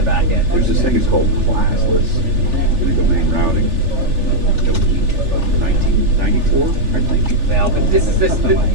back end. There's this thing, it's called classless in the domain routing of 1994, I think. Well, but this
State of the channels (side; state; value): left; late; 3.4 ms